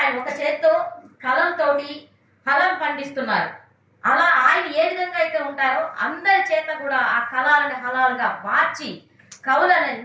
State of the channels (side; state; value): both; identical; correlation 1.00